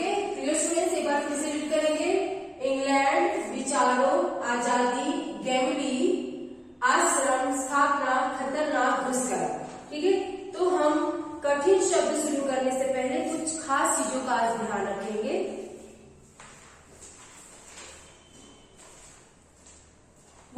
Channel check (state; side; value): identical; both; correlation 1.00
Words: clear students? एक बार फिर से रीड करेंगे। इंग्लैंड, विचारो, आजादी, गैंगली, आश्रम, स्थापना, खतरनाक, घुसकर। ठीक है। तो हम कठिन शब्द शुरू करने से पहले कुछ खास चीजों का आज ध्यान रखेंगे।